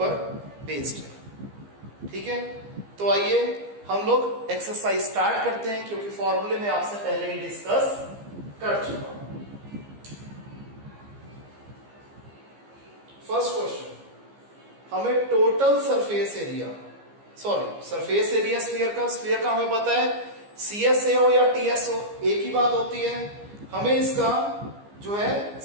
बेस्ड है, ठीक है। तो आइए हम लोग एक्सरसाइज स्टार्ट करते हैं, क्योंकि फॉर्मूले में आपसे पहले ही डिस्कस कर चुका हूं। फर्स्ट क्वेश्चन, हमें टोटल सरफेस एरिया स्फीयर का हमें पता है CSA हो या TS हो, एक ही बात होती है। हमें इसका जो है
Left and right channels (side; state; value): left; late; 15 ms